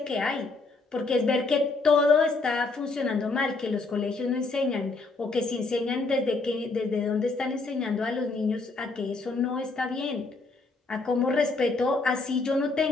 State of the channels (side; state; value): right; quieter; 3.7 dB